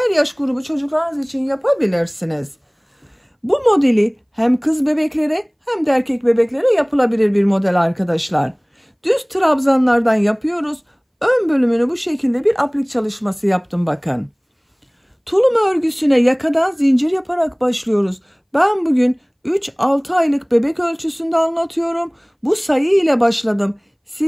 yaş grubu çocuklarınız için yapabilirsiniz. Bu modeli hem kız bebeklere hem de erkek bebeklere yapılabilir bir model arkadaşlar. Düz trabzanlardan yapıyoruz. Ön bölümünü bu şekilde bir aplik çalışması yaptım bakın. Tulum örgüsüne yakadan zincir yaparak başlıyoruz. Ben bugün 3-6 aylık bebek ölçüsünde anlatıyorum. Bu sayı ile başladım.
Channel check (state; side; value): identical; both; correlation 1.00